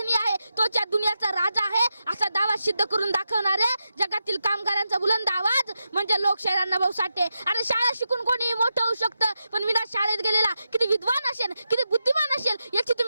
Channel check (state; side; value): inverted; both; correlation -0.88